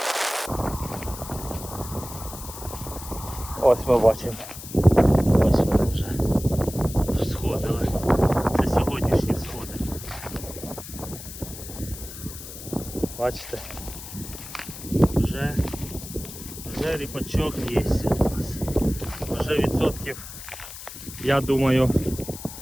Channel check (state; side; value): noise; left; hiss, 12 dB below the sound